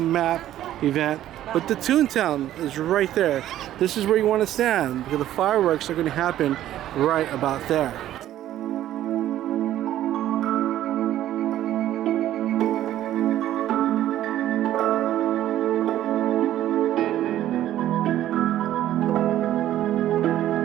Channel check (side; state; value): left; quieter; 12.7 dB